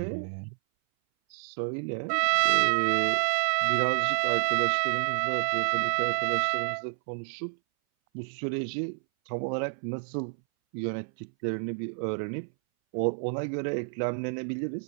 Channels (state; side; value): silent; left; 59 dB below the other